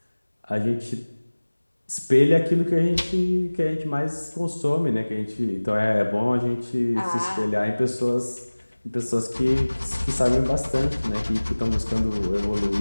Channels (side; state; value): both; inverted; correlation -1.00